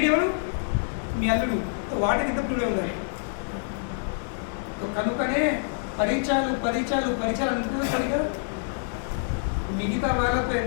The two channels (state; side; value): silent; right; 61 dB below the other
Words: మీ అల్లుడు. వాటికి ఎంత ప్రియుడే ఉండాలి. కనుకనే పరిచయాలు పరిచయాలు పరిచయాలు అనుకుంటుంది సరిగా. మిగతా వాళ్ళతో